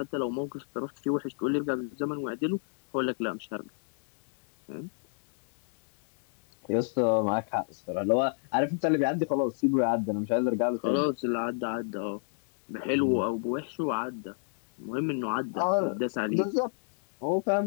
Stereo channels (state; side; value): silent; right; digital silence